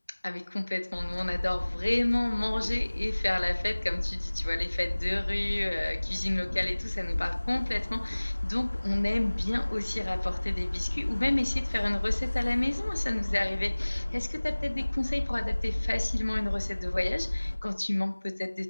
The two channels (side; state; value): both; inverted; correlation -1.00